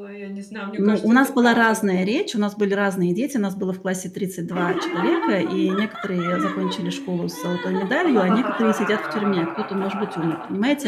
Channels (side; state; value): both; identical; correlation 1.00